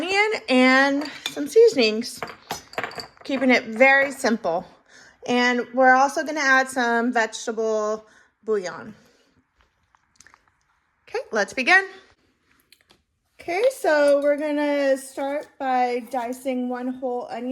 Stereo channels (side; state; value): both; identical; correlation 1.00